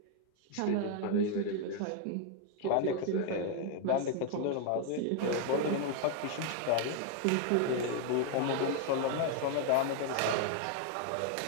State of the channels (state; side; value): different; both; correlation 0.00